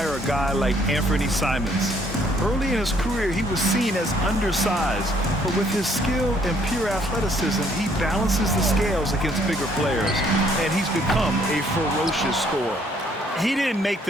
a guy like Anthony Simons. Early in his career, he was seen as undersized, but with his skill and pure athleticism, he balances the scales against bigger players, and he's become a ferocious scorer. He didn't make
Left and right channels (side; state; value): both; normal; correlation 0.65